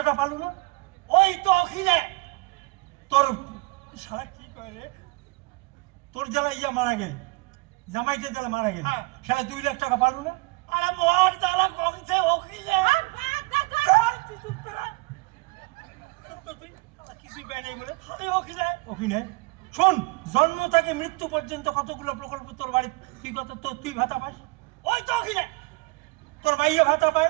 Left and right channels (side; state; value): left; quieter; 25.8 dB